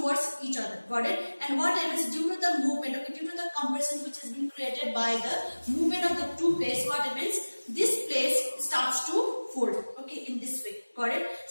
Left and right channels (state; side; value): inverted; both; correlation -1.00